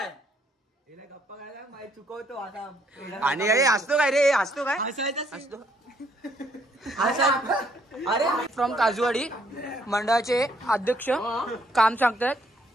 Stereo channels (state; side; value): normal; both; correlation 0.68